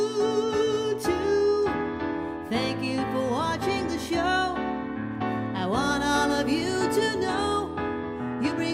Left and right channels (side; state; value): both; identical; correlation 1.00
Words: too. Thank you for watching the show. I want all of you to know you